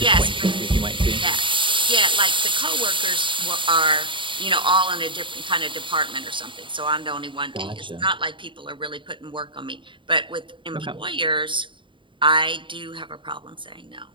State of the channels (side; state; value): left; late; 0.24 ms